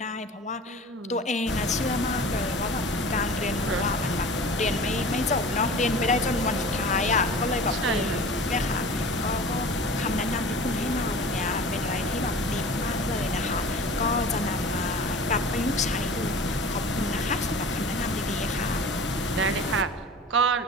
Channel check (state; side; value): normal; both; correlation 0.39